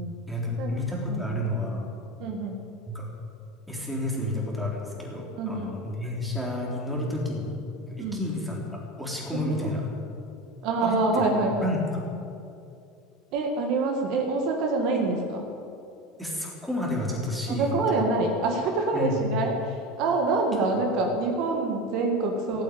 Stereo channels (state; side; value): normal; both; correlation 0.25